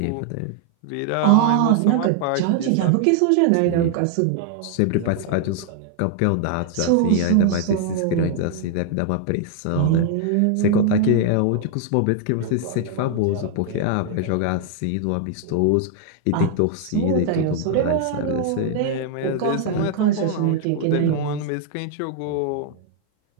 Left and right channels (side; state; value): both; different; correlation 0.00